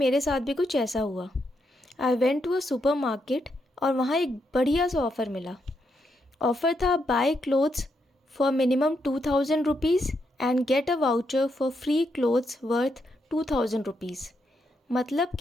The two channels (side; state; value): both; normal; correlation 0.80